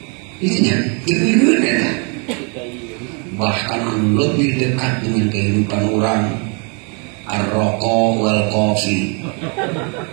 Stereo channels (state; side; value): quieter; left; 35.7 dB